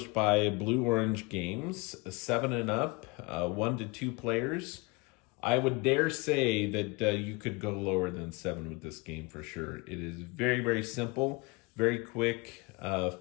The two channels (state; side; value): quieter; right; 26.3 dB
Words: by Blue Orange Games, 7 and up, 1 to 2 players. I would dare say that you could go lower than 7 with this game for sure. It is very, very simple, very quick,